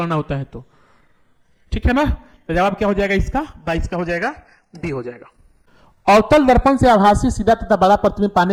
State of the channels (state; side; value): identical; both; correlation 1.00